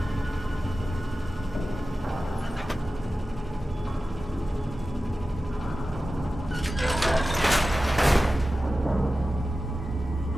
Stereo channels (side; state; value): both; normal; correlation 0.94